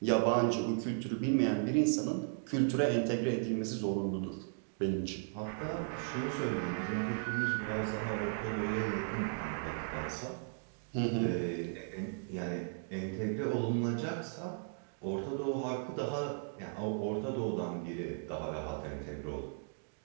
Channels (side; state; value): left; silent; digital silence